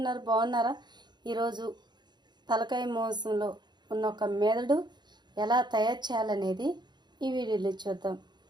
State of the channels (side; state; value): left; late; 0.21 ms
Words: బాగున్నారా? ఈరోజు తలకాయ మాంసంలో ఉన్న ఒక మెదడు ఎలా తయారు చేయాలనేది ఈ వీడియోలో చూద్దాం.